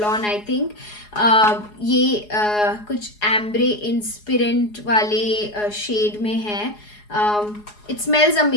on, I think. ये कुछ एम्ब्रे इंस्पिरेंट वाले शेड में है. इट स्मेल्स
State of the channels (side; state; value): right; late; 4.8 ms